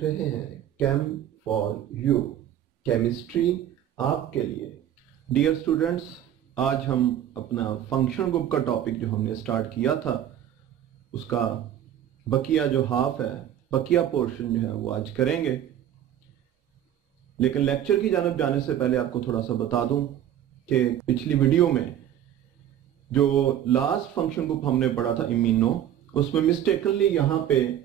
रहे हैं केम फॉर यू, केमिस्ट्री आपके लिए। डियर स्टूडेंट्स, आज हम अपना फंक्शन ग्रुप का टॉपिक जो हमने स्टार्ट किया था उसका बकिया जो हाफ है, बकिया पोर्शन जो है वो आज करेंगे। लेकिन लेक्चर की जानिब जाने से पहले आपको थोड़ा सा बता दूं कि पिछली वीडियो में जो लास्ट फंक्शन ग्रुप हमने पढ़ा था इम्यूनो, उसमें मिस्टेकनली यहां पे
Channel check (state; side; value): quieter; left; 10.9 dB